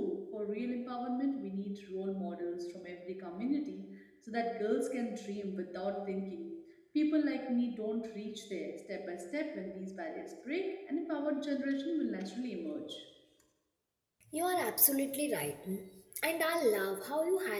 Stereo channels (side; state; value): both; identical; correlation 1.00